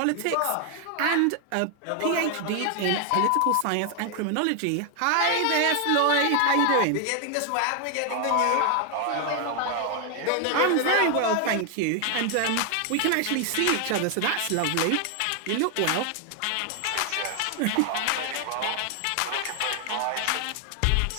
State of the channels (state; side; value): different; both; correlation 0.00